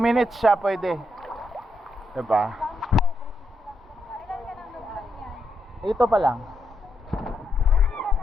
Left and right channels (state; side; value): normal; both; correlation 0.81